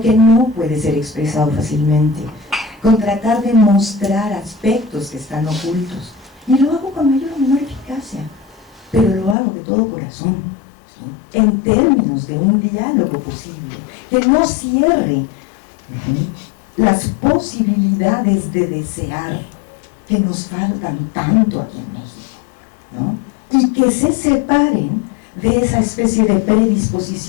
que no puede ser expresado fácilmente, con tratar de mostrar aspectos que están ocultos, y lo hago con mayor o menor eficacia, pero lo hago de todo corazón, ¿sí?, en términos de un diálogo posible, que no cierre las posibilidades de desear que nos faltan tanto aquí en México, ¿no?, y que se separen de esa especie de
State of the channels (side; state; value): right; drops out; at 9.3 s